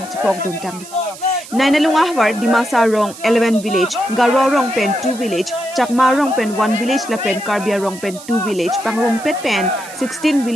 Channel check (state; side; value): noise; right; hiss, 16 dB below the sound